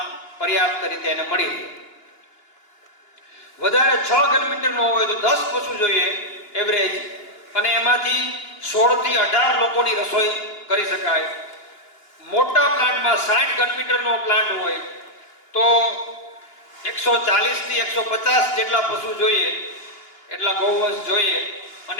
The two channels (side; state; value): right; late; 2.9 ms